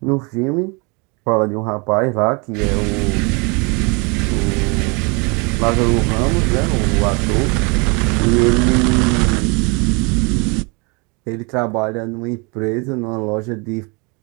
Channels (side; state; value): left; quieter; 30.9 dB